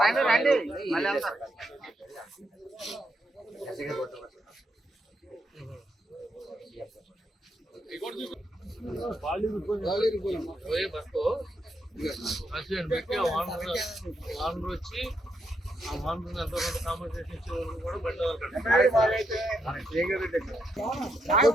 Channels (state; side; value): normal; both; correlation 0.80